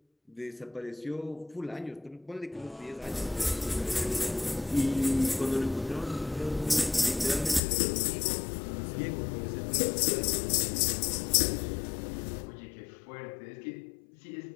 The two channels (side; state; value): right; drops out; at 7.6 s